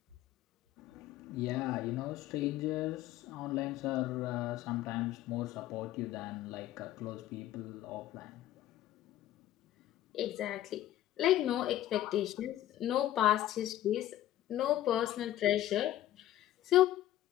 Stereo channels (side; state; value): right; quieter; 13.4 dB